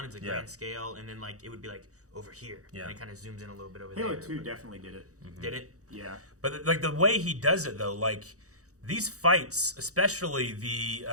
it's a grand scale, and then like it would be like over here. And it kind of zooms in a little bit over Halo there. Halo 2 definitely did it. Mm-hmm. Did it? Yeah. But like the way he does it though, like these fights, especially the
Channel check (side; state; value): left; late; 0.66 ms